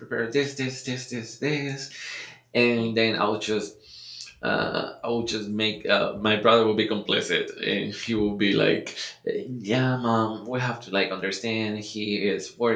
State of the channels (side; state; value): both; identical; correlation 1.00